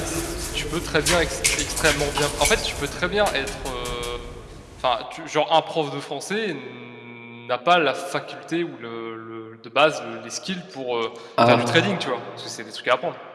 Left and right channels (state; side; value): identical; both; correlation 1.00